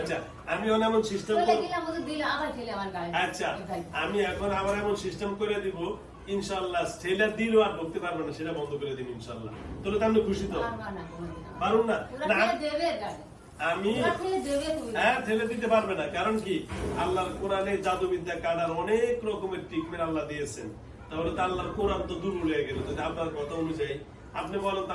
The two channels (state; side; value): identical; both; correlation 1.00